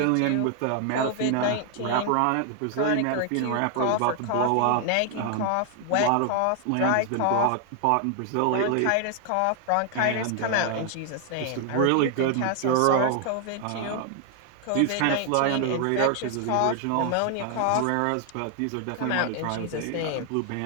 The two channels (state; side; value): different; both; correlation 0.00